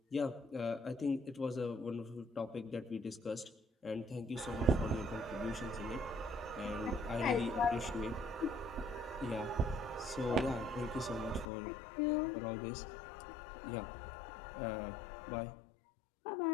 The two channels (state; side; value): drops out; right; at 11.5 s